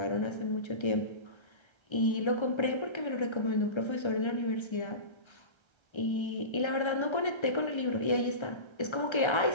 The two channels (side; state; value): right; late; 1.3 ms